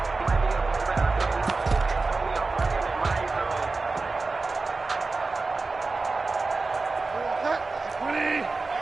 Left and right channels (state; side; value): quieter; left; 3.8 dB